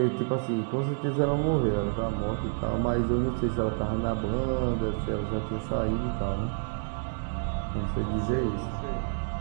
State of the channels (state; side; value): silent; left; 59 dB below the other